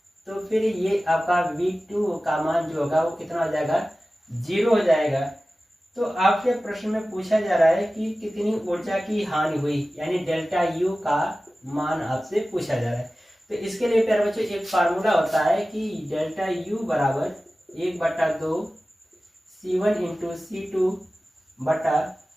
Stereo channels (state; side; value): normal; both; correlation 0.96